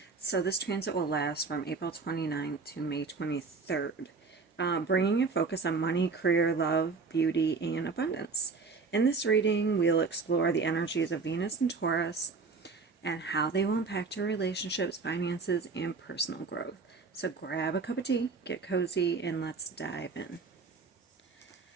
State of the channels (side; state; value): left; quieter; 4.6 dB